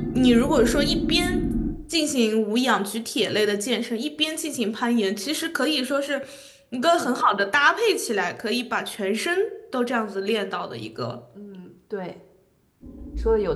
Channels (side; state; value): both; identical; correlation 1.00